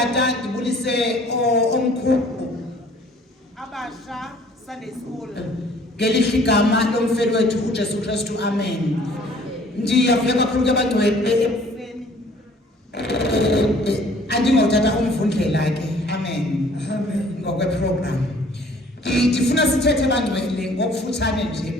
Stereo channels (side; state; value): both; normal; correlation 0.55